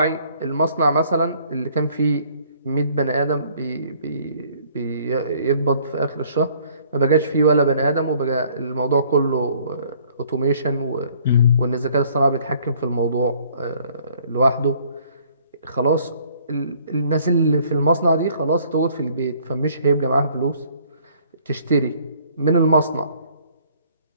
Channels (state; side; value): inverted; both; correlation -0.59